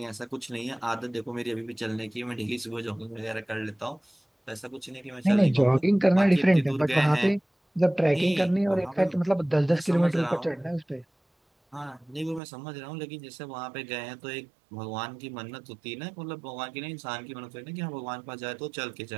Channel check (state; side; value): drops out; left; at 12.4 s